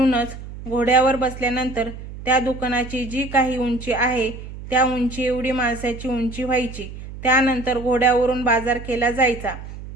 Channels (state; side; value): noise; right; hum, 12 dB below the sound